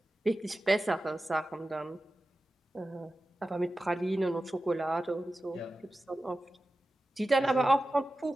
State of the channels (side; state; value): both; normal; correlation 0.94